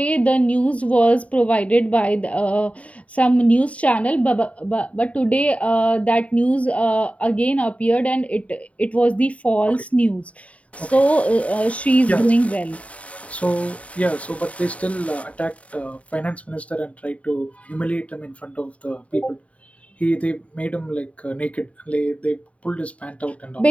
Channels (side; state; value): right; late; 0.066 ms